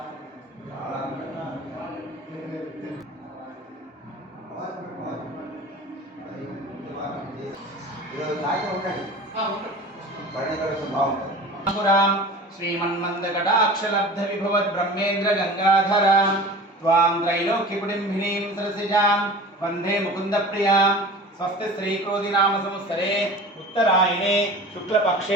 श्रीमन्मन्दकटाक्षलब्ध विभवद् ब्रह्मेन्द्र गंगाधरां त्वां त्रैलोक्यकुटुम्बिनीं सरसिजां वन्दे मुकुन्दप्रियां स्वस्ति श्रीक्रोधि नाम संवत्सरे उत्तरायणे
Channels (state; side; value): normal; both; correlation 0.38